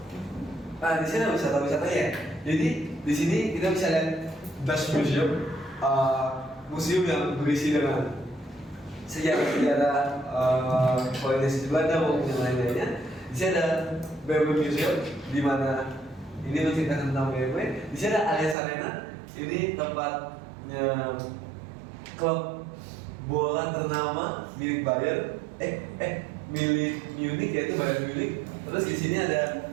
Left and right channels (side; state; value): left; drops out; at 18.6 s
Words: ada wisata-wisatanya ya. Jadi di sini kita bisa lihat Das Museum, museum yang berisi dengan sejarah kolonialisasi Belanda maupun yang lain-lainnya. Di sini ada BMW Museum, di mana ini menceritakan tentang BMW. Di sini ada Allianz Arena, ini tempatnya klub bola ternama milik Bayern, milik Munich, yaitu Bayern Munich. Terus di sini ada